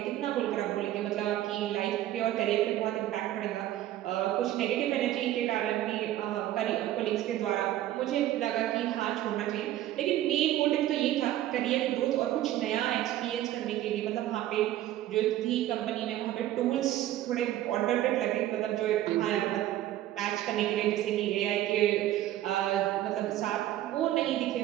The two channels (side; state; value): left; quieter; 13.6 dB